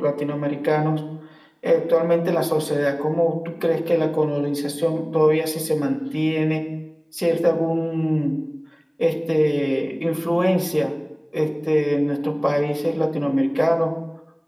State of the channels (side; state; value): both; identical; correlation 1.00